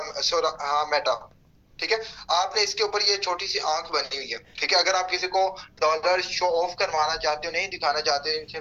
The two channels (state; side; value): identical; both; correlation 1.00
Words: मेटा, ठीक है। आपने इसके ऊपर ये छोटी सी आंख बनी हुई है, ठीक है। अगर आप किसी को डॉलर शो ऑफ करवाना चाहते हो, नहीं दिखाना चाहते,